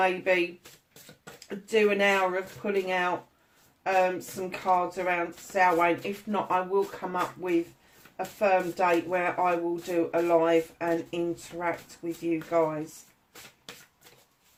do an hour of pulling out some cards around Samhain. If not, I will come up with a firm date where I will do a live and interact with you guys.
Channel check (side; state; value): both; identical; correlation 1.00